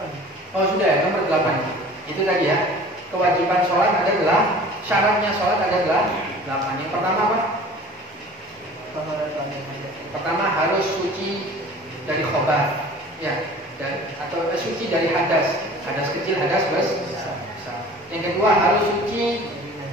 Oh sudah ya, nomor 8. Itu tadi ya. Kewajiban sholat adalah, syaratnya sholat adalah 8. Yang pertama apa? Pertama harus suci dari khobar, ya, atau suci dari hadas kecil, hadas besar. Yang kedua harus suci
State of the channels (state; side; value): normal; both; correlation 0.44